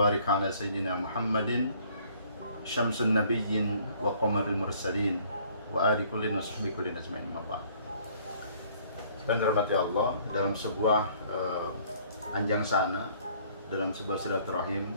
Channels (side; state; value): both; inverted; correlation -0.59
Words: ala sayyidina Muhammadin syamsun nabiyyin wa qamaril mursalin wa ali kullin wa sahbihi kullin ajma'in. Dan dirahmati Allah, dalam sebuah anjang sana, dalam sebuah silaturahim,